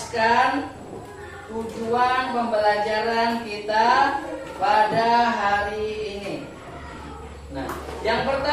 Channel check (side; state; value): both; identical; correlation 1.00